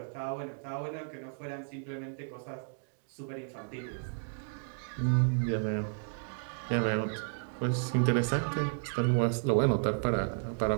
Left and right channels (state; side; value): silent; left; digital silence